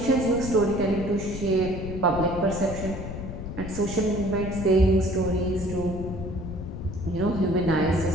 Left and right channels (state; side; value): noise; left; rumble, 8 dB below the sound